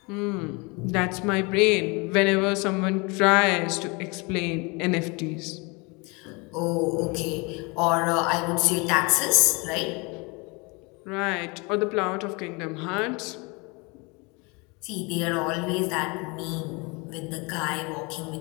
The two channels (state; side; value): quieter; right; 28.5 dB